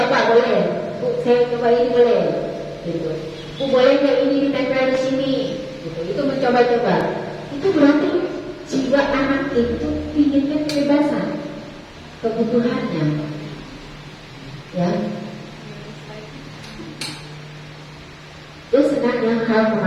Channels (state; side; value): identical; both; correlation 1.00